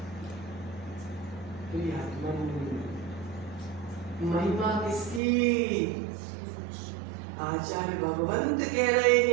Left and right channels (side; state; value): left; drops out; at 5.2 s